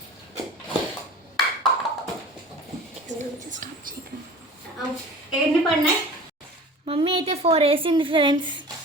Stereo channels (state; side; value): normal; both; correlation 0.40